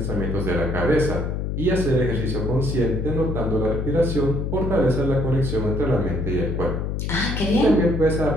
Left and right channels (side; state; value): left; noise; hum, 2 dB below the sound